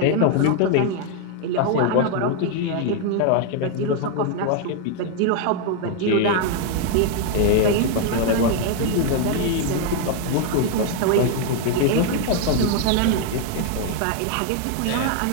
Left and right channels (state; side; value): different; both; correlation 0.00